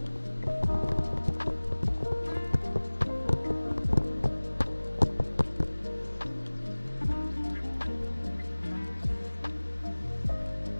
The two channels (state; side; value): inverted; both; correlation -1.00